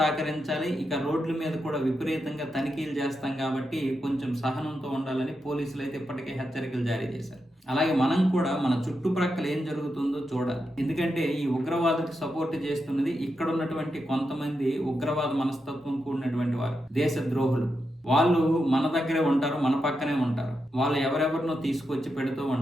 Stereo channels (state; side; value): normal; both; correlation 0.86